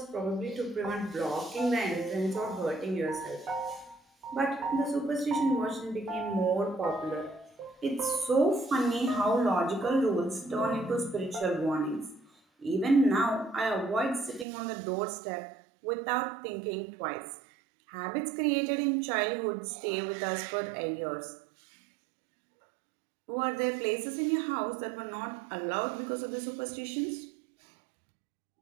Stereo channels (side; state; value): left; drops out; at 14.5 s